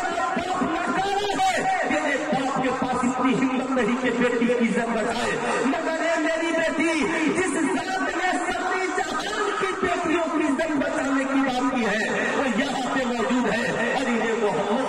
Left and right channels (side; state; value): both; identical; correlation 1.00